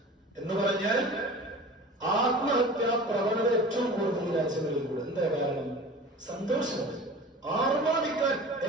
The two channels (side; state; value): both; normal; correlation 0.39